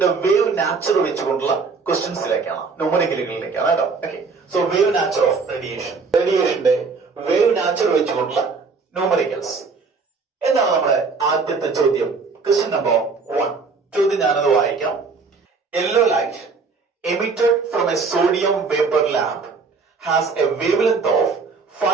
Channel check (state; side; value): quieter; left; 4.6 dB